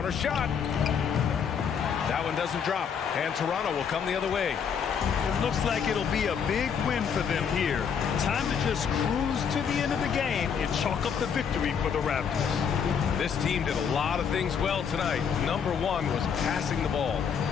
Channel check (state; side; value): quieter; right; 7.0 dB